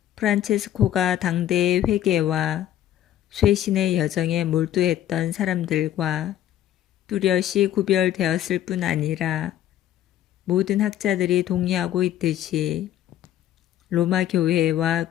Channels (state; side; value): quieter; right; 11.9 dB